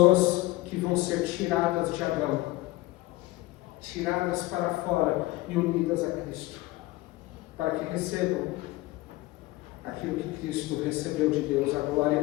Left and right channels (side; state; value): right; quieter; 19.1 dB